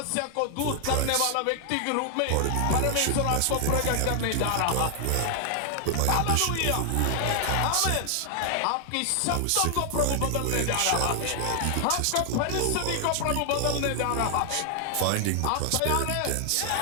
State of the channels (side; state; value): both; different; correlation 0.00